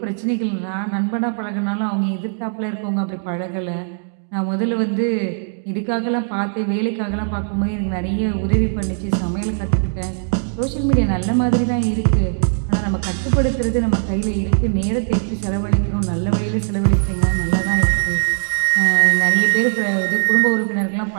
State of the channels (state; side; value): silent; left; digital silence